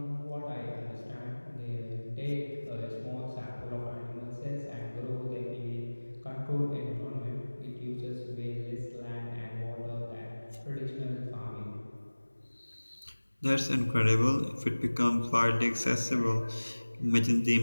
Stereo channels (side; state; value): both; inverted; correlation -1.00